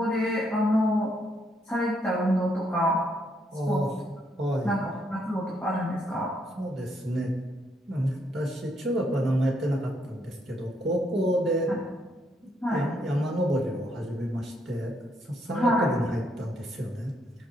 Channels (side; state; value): both; normal; correlation 0.74